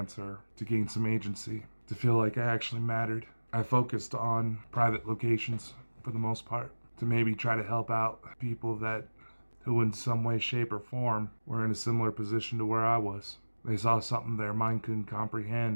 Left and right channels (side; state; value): both; inverted; correlation -1.00